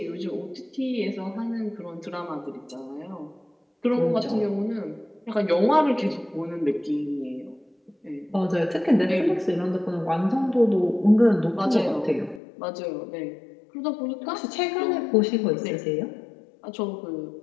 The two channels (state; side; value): drops out; right; at 12.4 s